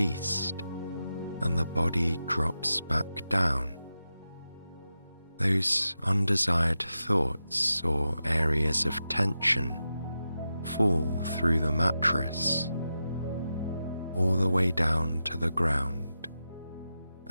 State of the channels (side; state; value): both; inverted; correlation -0.90